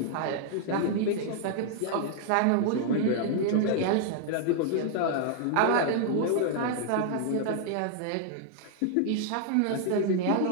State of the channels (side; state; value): both; different; correlation 0.00